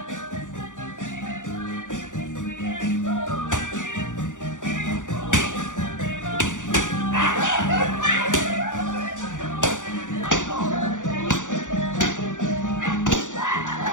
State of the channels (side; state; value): right; late; 0.86 ms